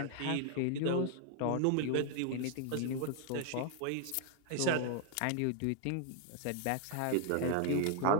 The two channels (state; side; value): different; both; correlation 0.00